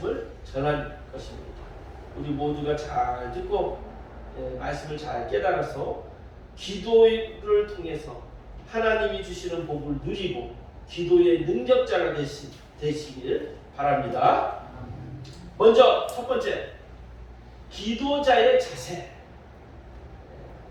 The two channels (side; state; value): both; identical; correlation 1.00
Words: 전할 것입니다. 우리 모두가 잘 듣고 말씀을 잘 깨달아서 기도를 통해서 하나님이 주시는 복을 누리고 기도의 능력자가 되시길 바랍니다. 먼저 첫 번째, 기도자의 자세.